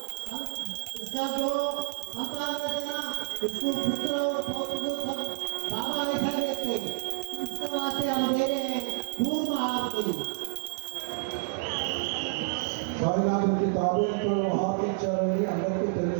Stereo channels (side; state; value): left; silent; digital silence